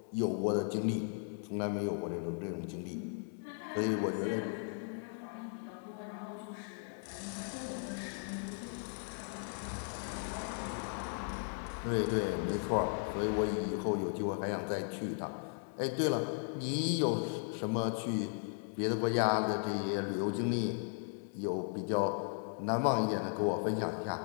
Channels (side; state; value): right; silent; 53 dB below the other